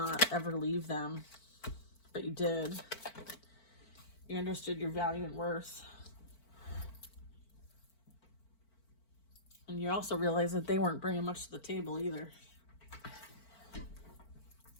ever leave them, but you did. You understood your value and worth. And you also realized that they weren't bringing much to the table either.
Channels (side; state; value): right; late; 4.5 ms